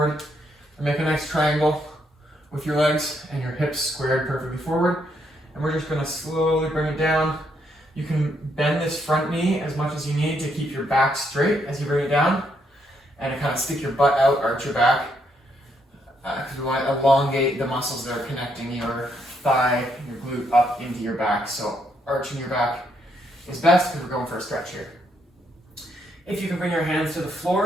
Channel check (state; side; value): normal; both; correlation 0.75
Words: and make a nice triangle with your legs and your hips squared perfectly forward. And we're just gonna slowly bring it down. You can bend this front knee as much as you need to keep your back straight as you bring it down. And to kind of stick your butt out, arch your back. Because we want to elongate the muscles that are connecting your thigh, your glute up into your back. So arching your back is best because we're going for a stretch here. If you can bring your hands to the